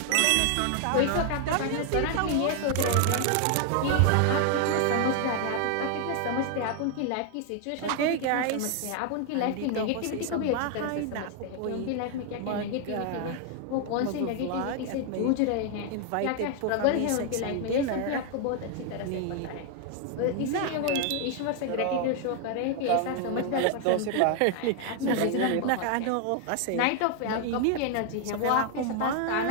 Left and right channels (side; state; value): both; different; correlation 0.00